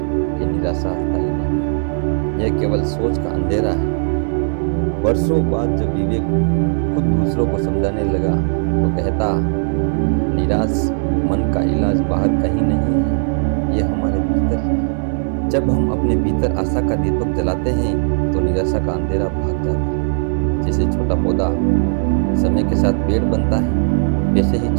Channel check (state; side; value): silent; left; digital silence